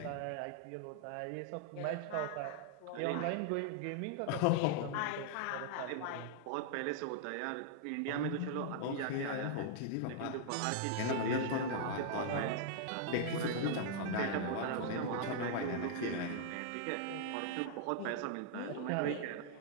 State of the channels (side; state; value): both; different; correlation -0.01